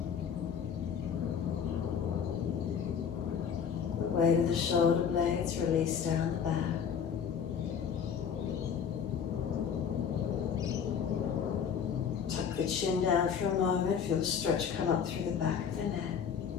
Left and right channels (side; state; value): right; quieter; 7.3 dB